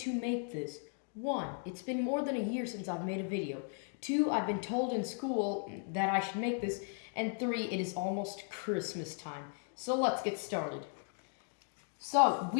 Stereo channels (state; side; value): silent; right; 54 dB below the other